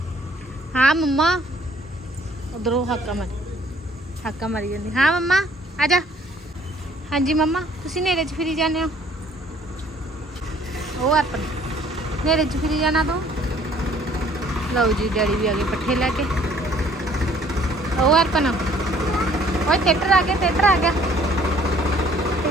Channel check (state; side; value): normal; both; correlation 0.59